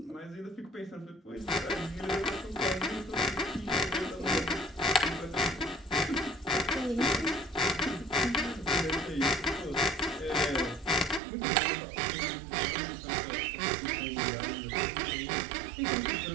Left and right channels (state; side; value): drops out; left; at 11.2 s